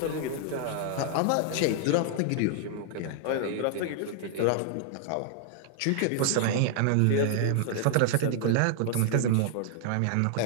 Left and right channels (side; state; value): both; different; correlation -0.01